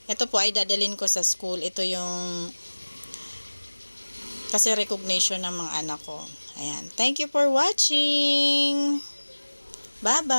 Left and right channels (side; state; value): both; inverted; correlation -1.00